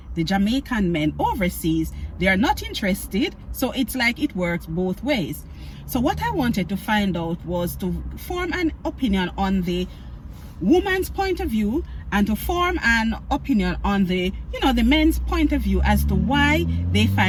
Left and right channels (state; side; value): identical; both; correlation 1.00